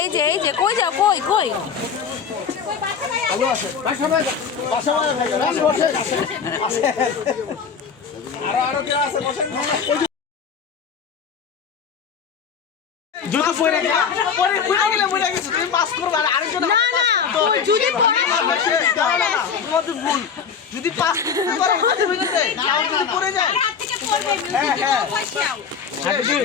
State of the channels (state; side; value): quieter; right; 6.6 dB